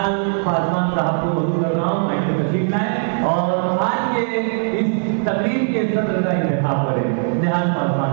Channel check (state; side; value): silent; left; digital silence